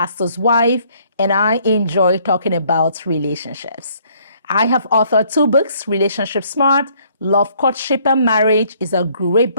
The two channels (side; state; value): both; inverted; correlation -0.64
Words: wife, and I enjoy talking about relationships. I have authored 2 books, Relationship Smart, Love, Courtship, and Marriage is a great